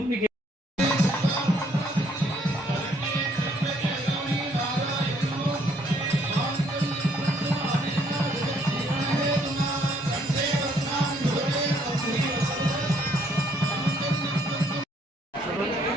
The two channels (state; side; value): normal; both; correlation 0.66